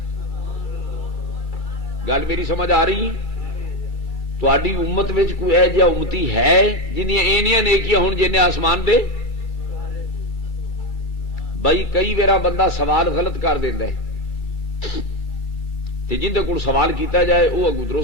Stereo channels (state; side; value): late; right; 2.3 ms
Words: گل میری سمجھ آ رہی؟ تہاڈی امت وچ کوئی ایہو جہا امتی ہے جنیاں اینیاں نیکیاں ہون جنہیں آسمان دے؟ بھائی کئی ویرا بندہ سوال غلط کر دیندا ہے تے جندے کول سوال کیتا جائے وہ اگوں